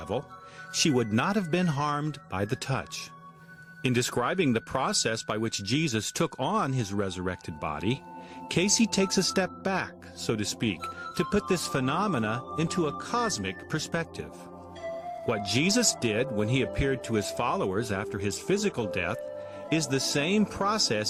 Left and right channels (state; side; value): identical; both; correlation 1.00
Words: she would not have been harmed by the touch. In describing the process by which Jesus took on his resurrected body, Casey takes a step back, so to speak, to put this phenomena into a cosmic perspective. What Jesus did when he appeared to his followers after his physical death is the same